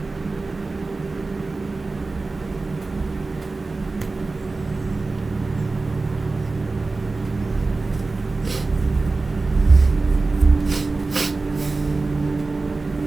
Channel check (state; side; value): quieter; left; 3.6 dB